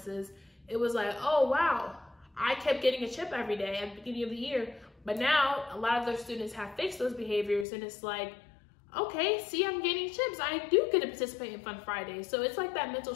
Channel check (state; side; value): drops out; right; at 7.7 s